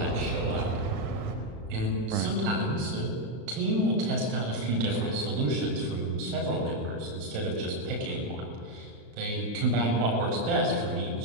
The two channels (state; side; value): late; left; 36 ms